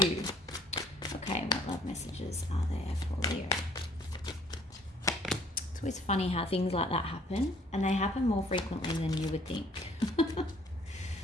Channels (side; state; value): both; normal; correlation 0.58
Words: Okay, what love messages are there for Leo? It's always funny how things like that happen, and they happen more frequently than you would think.